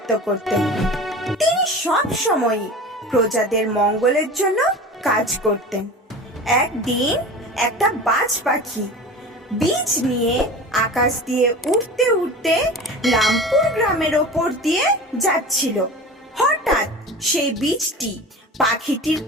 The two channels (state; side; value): normal; both; correlation 0.34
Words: করতেন। তিনি সব সময় প্রজাদের মঙ্গলের জন্য কাজ করতেন। একদিন একটা বাজ পাখি বীজ নিয়ে আকাশ দিয়ে উড়তে উড়তে রামপুর গ্রামের ওপর দিয়ে যাচ্ছিল। হঠাৎ সেই বীজটি পাখিটির